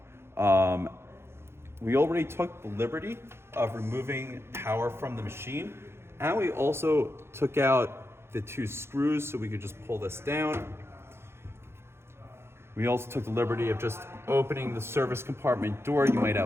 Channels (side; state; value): left; late; 0.12 ms